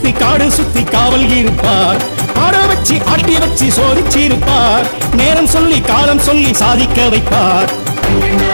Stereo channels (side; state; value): both; inverted; correlation -1.00